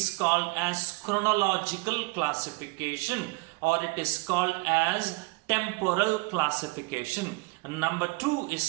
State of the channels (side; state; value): left; quieter; 26.2 dB